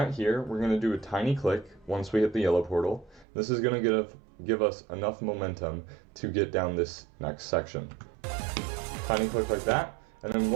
here, we're gonna do a tiny click once we hit the yellow portal. This is gonna give us enough momentum to get down this next section. Tiny click like that. And then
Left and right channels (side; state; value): left; drops out; at 3.2 s